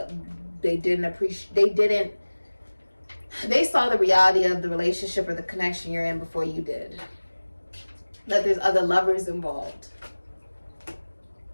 saw the reality of the relationship or the connection you're in before you did. That there's other lovers involved.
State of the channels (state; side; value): inverted; both; correlation -1.00